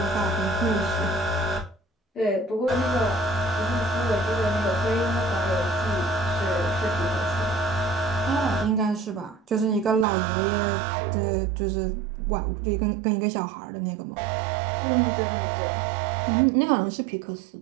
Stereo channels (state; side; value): drops out; left; at 10.1 s